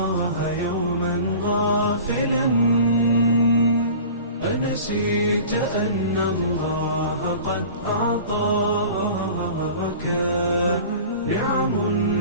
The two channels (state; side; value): inverted; both; correlation -0.41